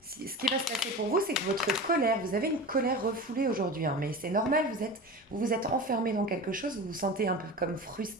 Ce qui va se passer pour vous, c'est que votre colère, vous avez une colère refoulée aujourd'hui, hein, mais c'est normal, vous vous êtes enfermé dans quelque chose, vous vous sentez un peu comme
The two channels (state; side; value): normal; both; correlation 0.30